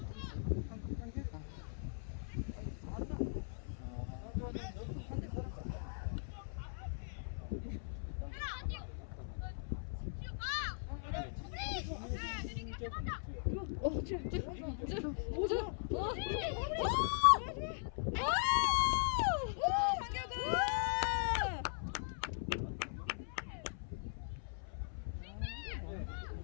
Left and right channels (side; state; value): right; silent; 51 dB below the other